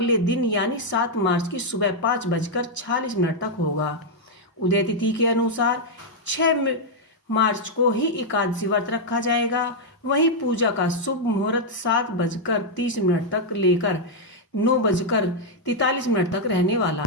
दिन यानी 7 मार्च की सुबह 5:46 तक होगा। उदय तिथि के अनुसार 6 मार्च को ही एकादशी व्रत रखा जाएगा। वहीं पूजा का शुभ मुहूर्त 7:30 तक लेकर 9:43 तक रहने वाला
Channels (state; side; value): normal; both; correlation -0.02